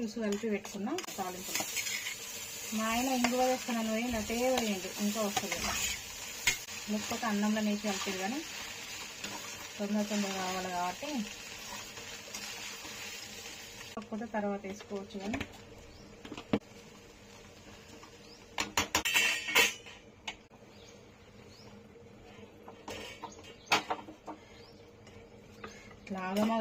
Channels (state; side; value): identical; both; correlation 1.00